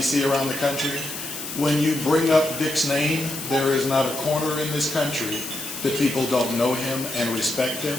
around the country, when you bring up Dick's name, there is not a corner in this country that people don't know him and respect him.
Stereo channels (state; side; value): noise; left; hiss, 8 dB below the sound